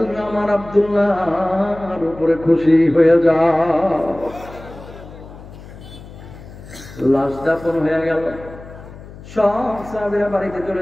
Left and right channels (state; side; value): noise; left; hum, 17 dB below the sound